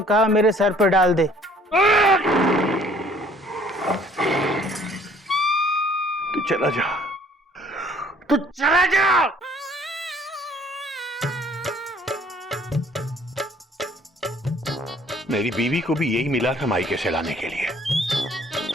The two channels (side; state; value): both; normal; correlation 0.57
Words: कहा मेरे सर पर डाल दे। तू चला जा, तू चला जा। मेरी बीवी को भी यही मिला था मायके से लाने के लिए।